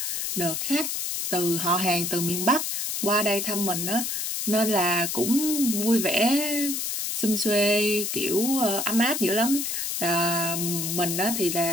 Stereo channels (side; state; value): left; noise; hiss, 2 dB below the sound